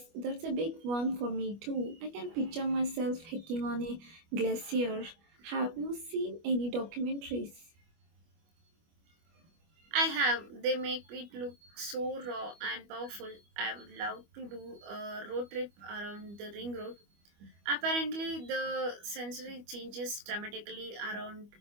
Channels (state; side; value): late; left; 25 ms